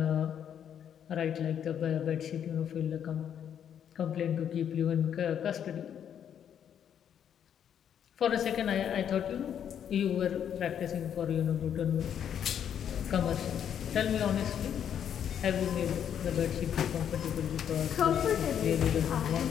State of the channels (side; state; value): right; quieter; 9.0 dB